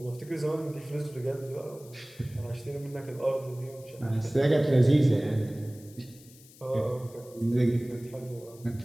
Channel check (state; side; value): noise; left; hiss, 23 dB below the sound